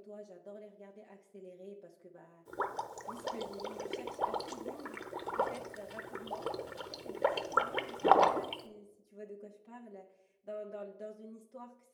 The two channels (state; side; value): identical; both; correlation 1.00